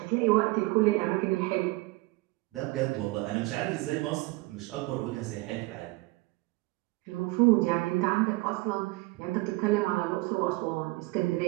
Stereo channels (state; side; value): quieter; left; 22.4 dB